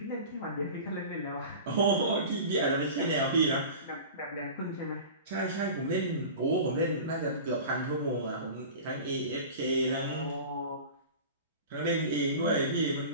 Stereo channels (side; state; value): both; inverted; correlation -0.36